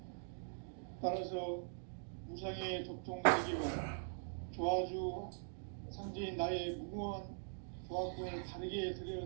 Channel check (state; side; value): silent; left; digital silence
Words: 따라서 무상의 도통 세계와 조화주 상제인 나의 무궁한 조화권을 다르게